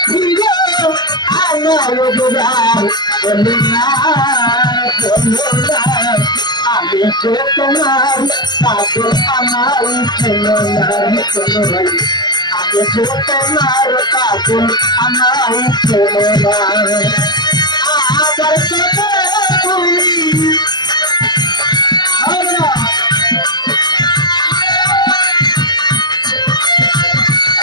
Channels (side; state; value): right; late; 0.21 ms